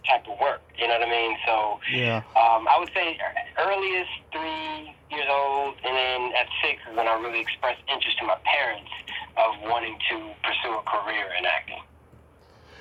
type of work. You know what I mean? So Yeah. I would say earliest 3 years old, and then at 6 is when I really expressed interest to my parents of wanting to pursue a career in acting.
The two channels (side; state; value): both; identical; correlation 1.00